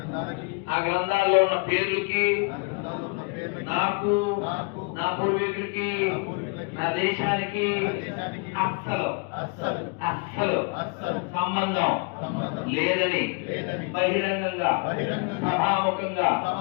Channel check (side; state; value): right; quieter; 32.4 dB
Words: ఆ గ్రంథాల్లో ఉన్న పేర్లకి నాకు నా పూర్వీకులకి నా దేశానికి అస్సలు సంబంధం లేదని బహిరంగంగా సభాముఖంగా